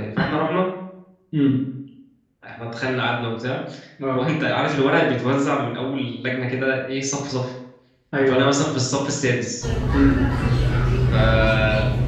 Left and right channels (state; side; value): identical; both; correlation 1.00